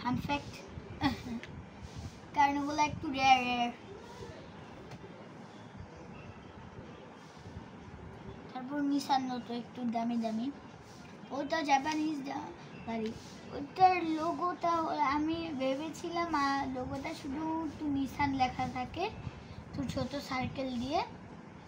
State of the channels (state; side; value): identical; both; correlation 1.00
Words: আনফ্যাক্ট, কারণ ওগুলো একটু রেয়ার। তারপর নিসান নতো একটু দামি, ওটা জাপানিজ গাড়ি। ওটার লোগোটা আমি ভেবেছিলাম লোগোটা শুধু নিসান লেখা থাকে তো ছোট সার্কেল দিয়ে,